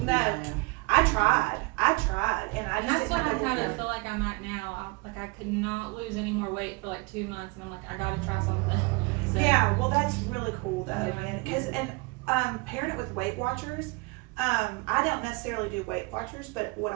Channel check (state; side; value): quieter; left; 27.2 dB